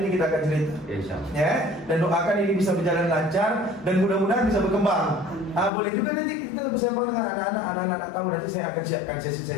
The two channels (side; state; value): right; drops out; at 5.7 s